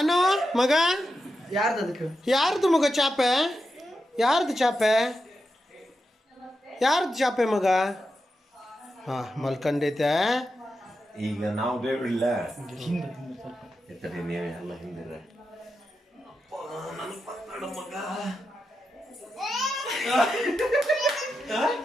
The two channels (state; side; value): normal; both; correlation 0.88